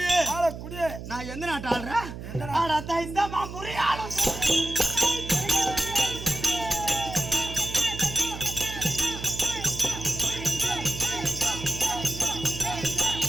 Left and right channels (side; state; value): right; noise; hum, 10 dB below the sound